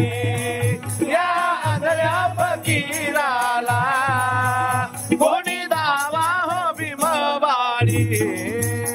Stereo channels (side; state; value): both; identical; correlation 1.00